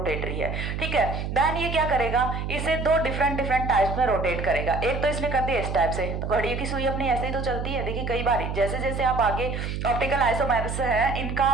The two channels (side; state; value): right; noise; hum, 4 dB below the sound